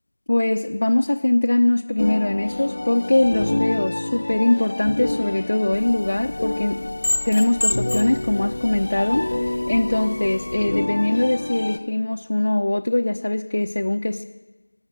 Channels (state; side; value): inverted; both; correlation -1.00